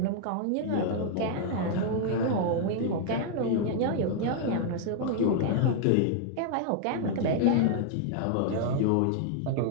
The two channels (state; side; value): different; both; correlation 0.00